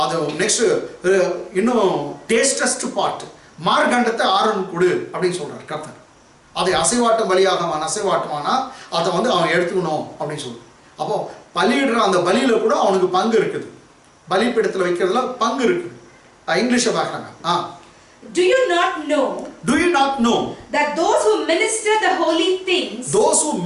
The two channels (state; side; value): identical; both; correlation 1.00